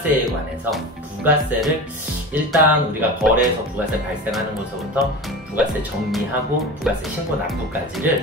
관해서 부가세를 일단 우리가 거래에서 부가세 발생하는 것부터 부가세 정리하고 부가세 신고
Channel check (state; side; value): normal; both; correlation 0.30